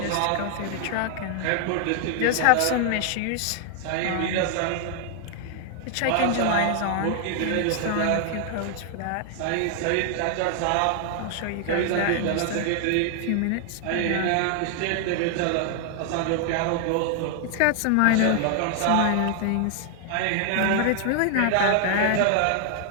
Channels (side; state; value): both; different; correlation 0.00